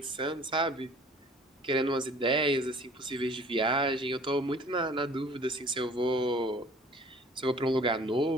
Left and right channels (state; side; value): normal; both; correlation 0.52